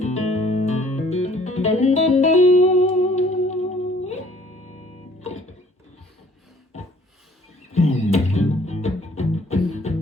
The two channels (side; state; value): both; normal; correlation 0.57